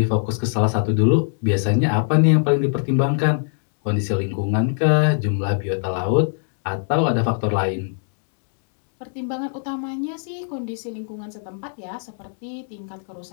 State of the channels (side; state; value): right; silent; digital silence